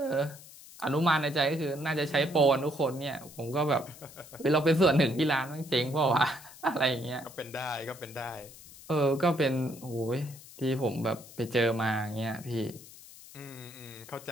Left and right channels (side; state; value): left; noise; hiss, 19 dB below the sound